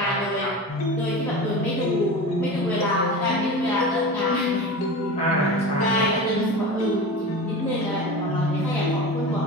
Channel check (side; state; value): both; normal; correlation 0.30